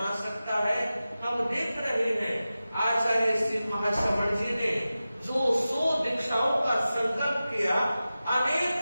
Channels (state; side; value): inverted; both; correlation -0.94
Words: सकता है। हम देख रहे हैं आचार्य श्री महाश्रवण जी ने जो 100 दीक्षाओं का संकल्प किया,